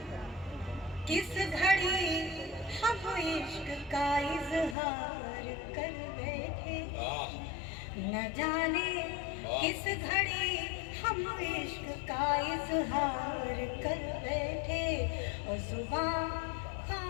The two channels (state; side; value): drops out; right; at 4.8 s